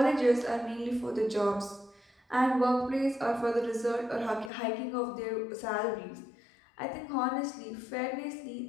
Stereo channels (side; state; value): right; drops out; at 4.5 s